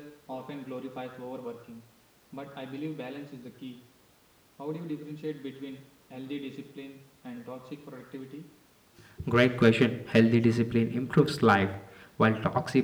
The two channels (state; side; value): identical; both; correlation 1.00